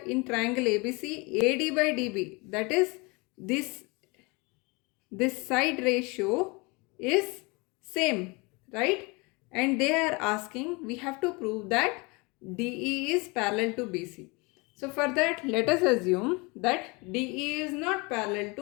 in triangle ABC? AD by DB, that is this side ratio is same, right? And they are asking, we have to prove that DE is parallel to BC. So for that, let us assume that DE is not parallel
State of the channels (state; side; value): quieter; right; 27.4 dB